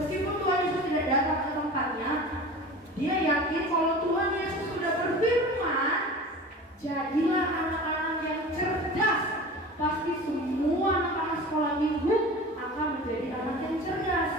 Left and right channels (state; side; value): normal; both; correlation 0.36